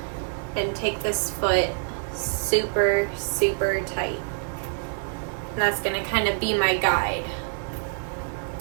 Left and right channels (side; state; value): left; silent; digital silence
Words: and take this foot super, super tight. And that's going to kind of be my guide.